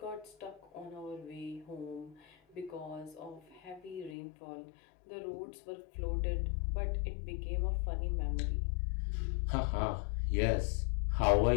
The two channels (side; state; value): right; drops out; at 4.2 s